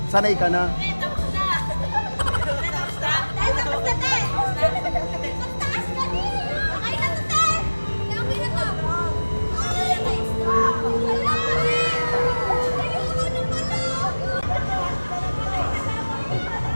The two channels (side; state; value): both; inverted; correlation -1.00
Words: Sanay ka na.